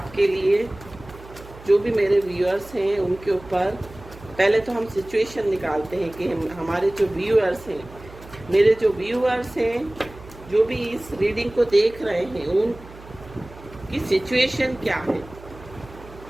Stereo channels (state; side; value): noise; right; hum, 19 dB below the sound